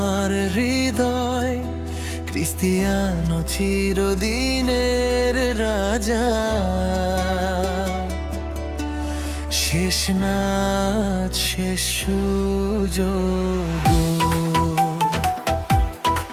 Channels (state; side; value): identical; both; correlation 1.00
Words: হৃদয়, ক্রিস্টিয়ানো চিরদিনের রাজা। শেষ নাচ শেষ সুযোগ,